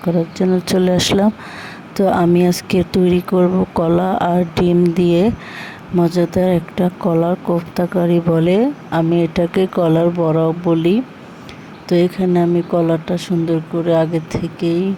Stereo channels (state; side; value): identical; both; correlation 1.00